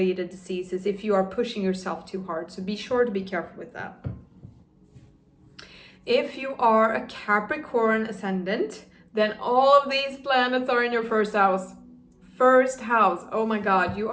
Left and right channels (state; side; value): identical; both; correlation 1.00